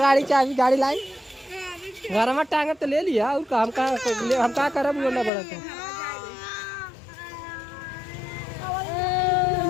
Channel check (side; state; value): right; drops out; at 5.3 s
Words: चाबी गाड़ी लाई घर में टांगे तो ले लिया और हम का करब ना बड़ा था।